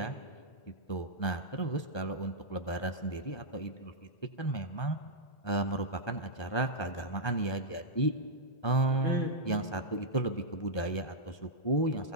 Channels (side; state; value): right; late; 1.2 ms